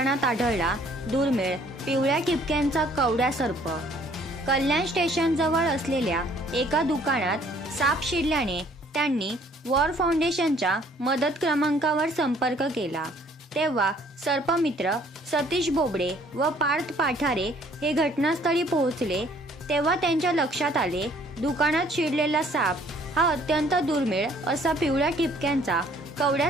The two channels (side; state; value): both; normal; correlation 0.59